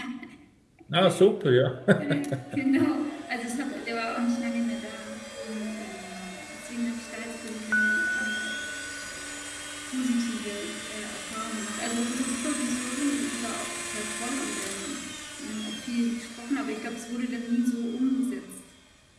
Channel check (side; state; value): both; identical; correlation 1.00